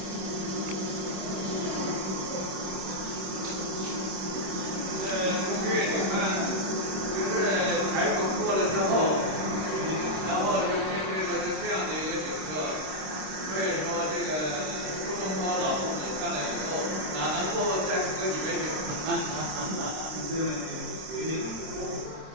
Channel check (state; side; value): late; left; 26 ms